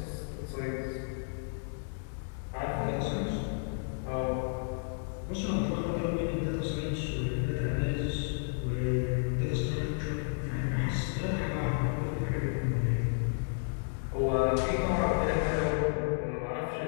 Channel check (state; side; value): silent; right; digital silence